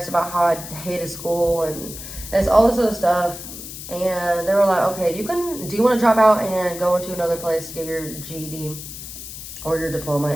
about how I hated school, and it's all this other stuff. And they were like, okay, do you want to drop out and go into another place to get your GED or your diploma?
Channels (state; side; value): noise; left; hiss, 11 dB below the sound